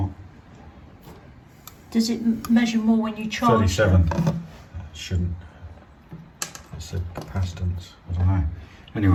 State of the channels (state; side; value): identical; both; correlation 1.00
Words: Does it measure more when you charge? 37. It shouldn't. It said capacitance. I don't know.